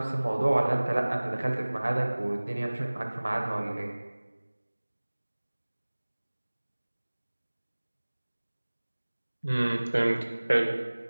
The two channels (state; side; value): inverted; both; correlation -1.00